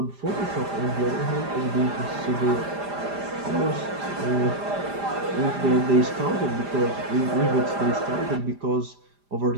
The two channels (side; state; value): left; late; 5.0 ms